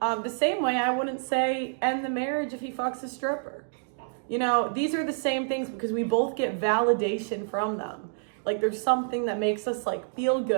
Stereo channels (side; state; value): left; silent; digital silence